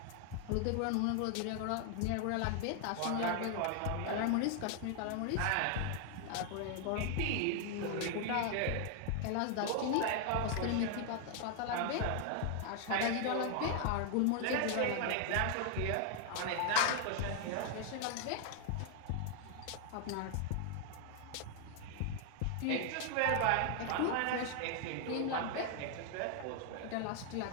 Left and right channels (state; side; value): different; both; correlation 0.00